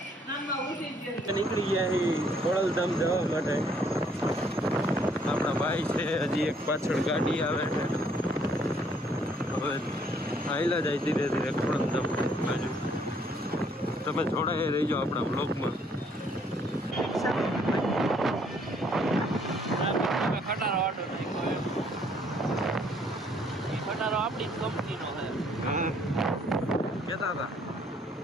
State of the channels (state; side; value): normal; both; correlation 0.65